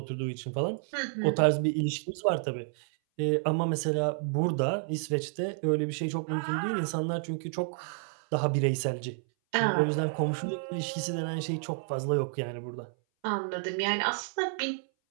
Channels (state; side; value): silent; left; 58 dB below the other